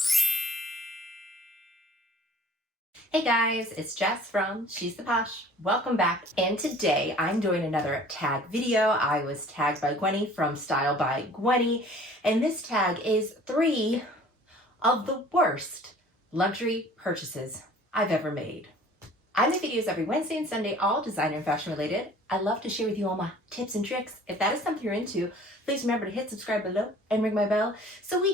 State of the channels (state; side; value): normal; both; correlation 0.50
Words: Hey guys, it's Jess from She's the Posh. Welcome back. And today I'm doing another tag video. I was tagged by Gwenny from Style by Gwenny, and this tag is 3 of the worst luxury purchases I've ever made. I make videos every Wednesday and Sunday, all designer and fashion related. I love to share with you all my tips and tricks. If that is something you're into, please remember to hit subscribe below and ring my bell so